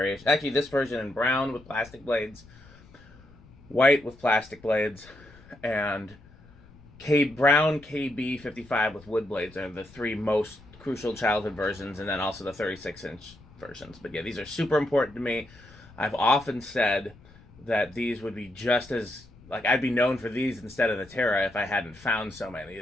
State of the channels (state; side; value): noise; left; rumble, 24 dB below the sound